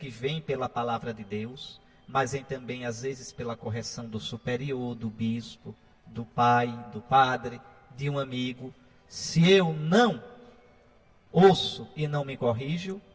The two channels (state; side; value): identical; both; correlation 1.00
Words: vem pela palavra de Deus, mas vem também às vezes pela correção do superior, do bispo, do pai, do padre, de um amigo, se eu não ouço e não me corrijo,